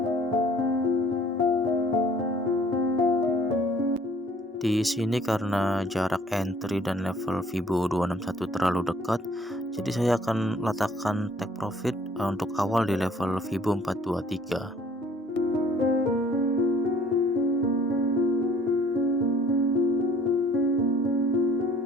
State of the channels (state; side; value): normal; both; correlation 0.56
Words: Di sini karena jarak entry dan level Fibo 261 terlalu dekat, jadi saya akan letakkan take profit untuk awal di level Fibo 423.